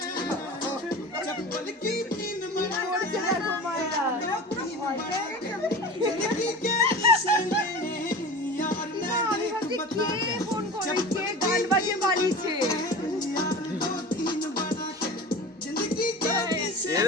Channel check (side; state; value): both; normal; correlation 0.34